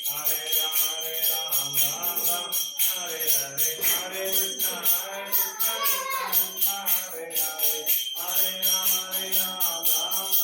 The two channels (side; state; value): both; identical; correlation 1.00